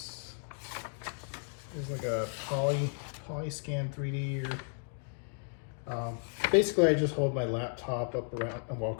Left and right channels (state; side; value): silent; right; 55 dB below the other